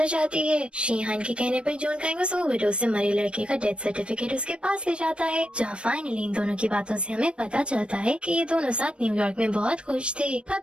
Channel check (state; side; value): late; left; 0.058 ms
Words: हो जाती है। शीहान के कहने पर जून कांग उस ओवरडोज से मरे लड़के का डेथ सर्टिफिकेट उसके पास ले जाता है, जहाँ फाइनली इन दोनों की बातों से हमें पता चलता है कि ये दोनों साथ न्यूयॉर्क में बहुत खुश थे। पर